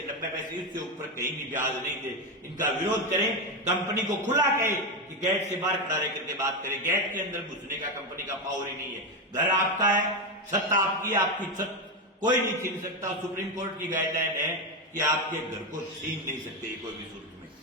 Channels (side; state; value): both; normal; correlation 0.11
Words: 90 पैसे, इससे ऊपर कहीं भी ब्याज नहीं दे। इनका विरोध करें। कंपनी को खुला कहे कि गेट से बाहर खड़ा रह करके बात करें। गेट के अंदर घुसने का कंपनी का पावर ही नहीं है। घर आपका है, छत आपकी, आपकी छत कोई नहीं छीन सकता। सुप्रीम कोर्ट की गाइडलाइन है कि आपके घर को छीन नहीं सकते कोई भी सूरत में।